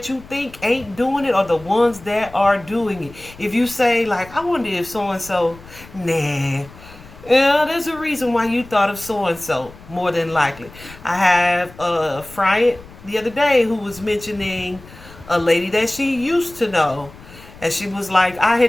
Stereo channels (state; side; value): noise; left; rumble, 20 dB below the sound